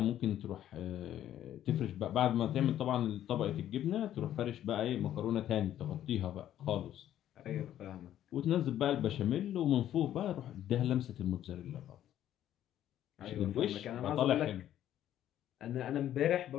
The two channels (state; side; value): quieter; right; 11.7 dB